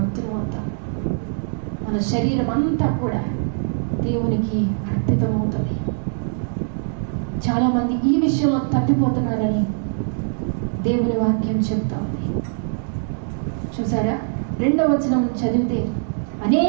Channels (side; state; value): left; silent; digital silence